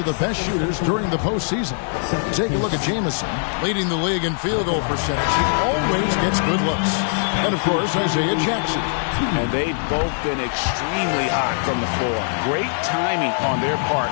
the best shooters during the postseason. Take a look at Jamison, leading the league in field goal percentage. He always gets good looks. And, of course, Isaiah Jackson. And they've both been extremely hot from the floor. Great timing on their part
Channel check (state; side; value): silent; right; 59 dB below the other